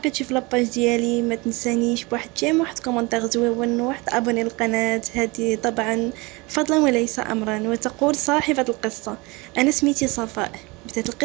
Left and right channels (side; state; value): left; quieter; 25.4 dB